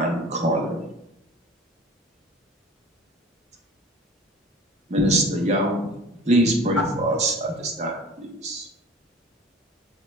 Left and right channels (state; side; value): normal; both; correlation 0.42